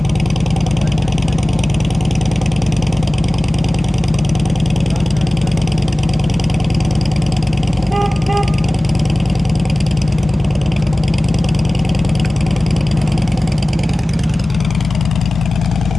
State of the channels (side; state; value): both; normal; correlation 0.98